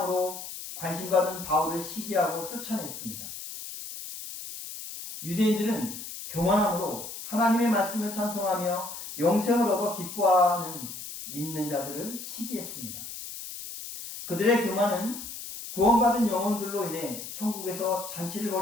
관심받은 바울을 시기하고 쫓아냈습니다. 유대인들은 교만함으로 하나님의 말씀을 찬송하며 영생을 얻어 기뻐하는 믿는 자들을 시기했습니다. 그들의 교만은 구원받은 영혼들로 인해 천국에서 잔치를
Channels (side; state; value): left; noise; hiss, 10 dB below the sound